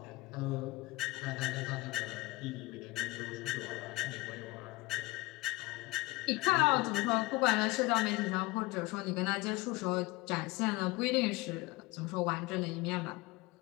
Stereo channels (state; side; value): quieter; right; 22.0 dB